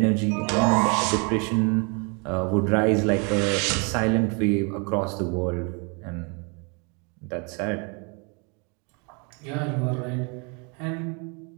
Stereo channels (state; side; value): quieter; left; 33.7 dB